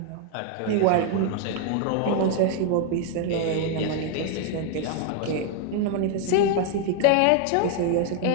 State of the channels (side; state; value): both; different; correlation 0.00